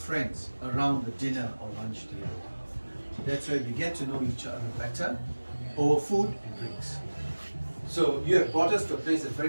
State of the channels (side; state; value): both; inverted; correlation -1.00